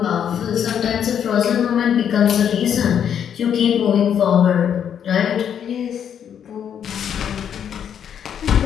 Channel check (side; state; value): right; quieter; 8.6 dB